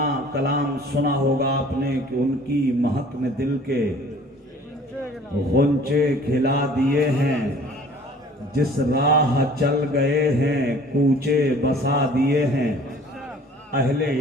کلام سنا ہوگا آپ نے کہ ان کی مہک نے دل کے غنچے کھلا دیے ہیں، جس راہ چل گئے ہیں کوچے بسا دیے ہیں۔ اہل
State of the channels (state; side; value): normal; both; correlation 0.51